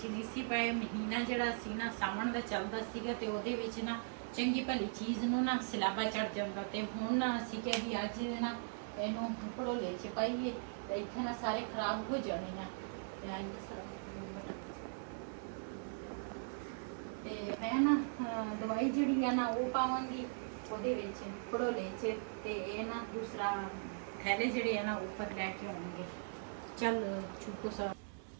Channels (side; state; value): left; silent; 52 dB below the other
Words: ਨਹੀਂ ਸੀ ਪਏ। ਮਹੀਨਾ ਜਿਹੜਾ ਸੀ ਨਾ ਸਾਵਣ ਦਾ ਚੱਲਦਾ ਸੀਗਾ ਤੇ ਉਹਦੇ ਵਿੱਚ ਨਾ ਚੰਗੀ ਭਲੀ ਚੀਜ਼ ਨੂੰ ਨਾ ਸਿਲਾਬਾ ਚੜ ਜਾਂਦਾ ਤੇ ਹੁਣ ਅਸੀਂ ਕਿਹਾ ਵੀ ਅੱਜ ਨਾ ਇਹਨੂੰ ਭੜੋਲੇ ਚ ਪਾਈਏ ਤੇ ਇੱਥੇ ਨਾ ਸਾਰੇ ਖਰਾਬ ਹੋ ਜਾਣੇ ਆ। ਤੇ ਮੈਂ ਨਾ ਦਵਾਈ ਜਿਹੜੀ ਆ ਨਾ ਉਹ ਪਾਵਾਂਗੀ ਉਹਦੇ ਵਿੱਚ ਭੜੋਲੇ ਚ ਤੇ ਇਹ ਨਾ ਦੂਸਰਾ ਥੈਲੇ ਜਿਹੜੇ ਆ ਨਾ ਉੱਪਰ ਲੈ ਕੇ ਆਉਣਗੇ। ਚੱਲ ਚੁੱਕੋ ਸਾ